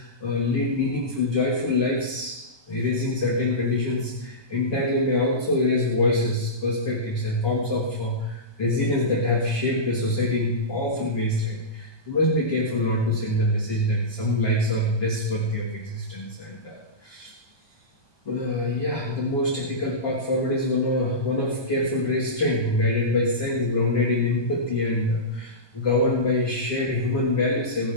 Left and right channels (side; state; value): right; late; 1.2 ms